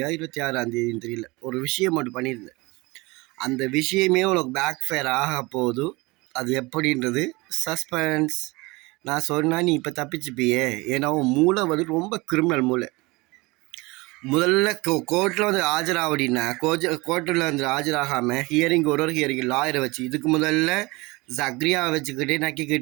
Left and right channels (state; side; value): quieter; left; 23.6 dB